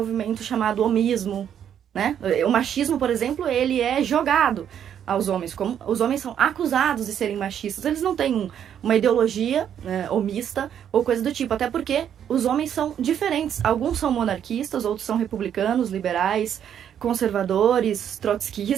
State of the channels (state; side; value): quieter; left; 9.2 dB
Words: chamado homismo, né? O machismo, por exemplo, ele é jogado aos homens, como os homens são acusados de serem machistas, eles não têm uma ideologia homista ou coisa do tipo, até porque os homens são diferentes, alguns são monarquistas, outros são republicanos, liberais, conservadores,